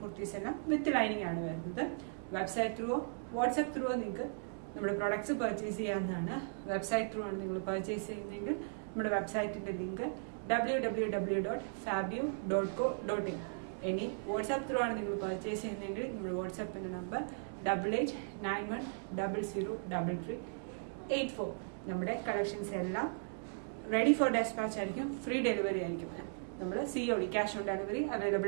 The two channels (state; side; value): silent; left; digital silence